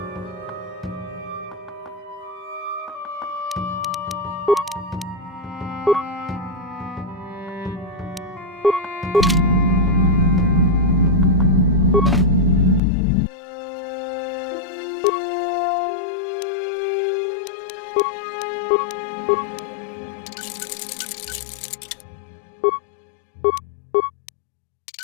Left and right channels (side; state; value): right; drops out; at 12.8 s